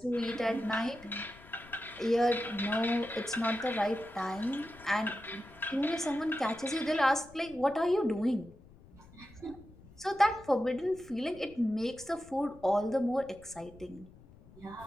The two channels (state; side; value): noise; left; rumble, 22 dB below the sound